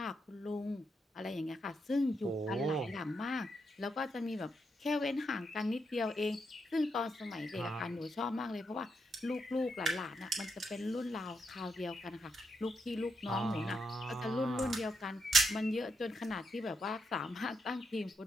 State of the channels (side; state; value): both; normal; correlation 0.82